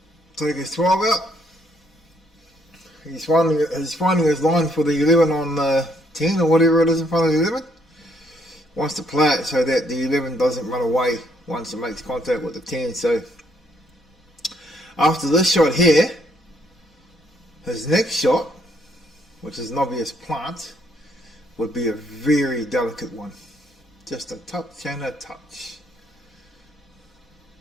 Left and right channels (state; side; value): normal; both; correlation 0.70